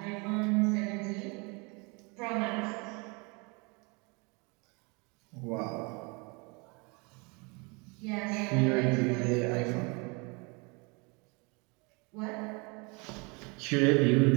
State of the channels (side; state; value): left; quieter; 30.0 dB